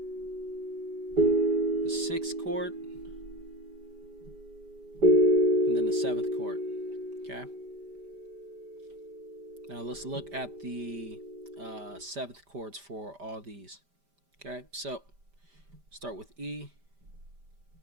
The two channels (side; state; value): left; late; 5.0 ms